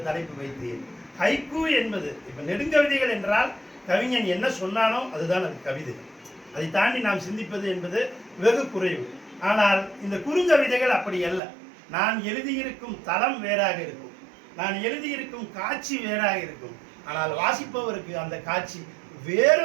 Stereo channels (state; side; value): drops out; left; at 11.4 s